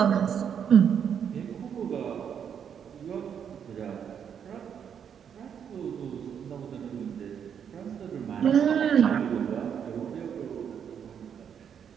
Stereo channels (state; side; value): quieter; left; 8.0 dB